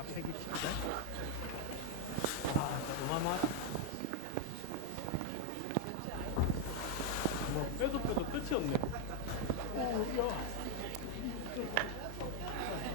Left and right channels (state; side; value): different; both; correlation 0.01